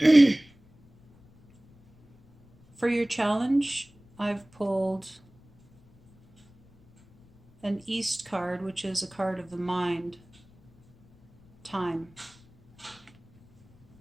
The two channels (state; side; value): noise; left; rumble, 29 dB below the sound